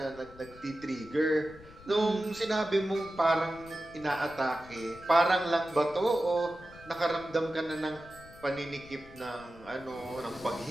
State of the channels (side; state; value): left; noise; rumble, 20 dB below the sound